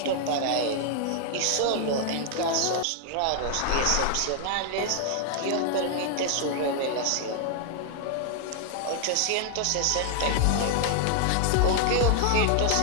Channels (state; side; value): different; both; correlation 0.00